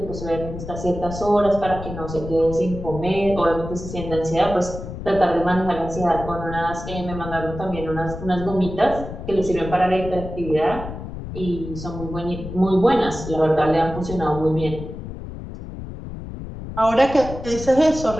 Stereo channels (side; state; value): left; noise; rumble, 9 dB below the sound